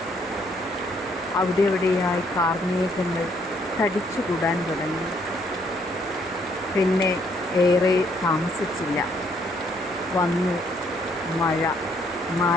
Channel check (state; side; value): normal; both; correlation 0.68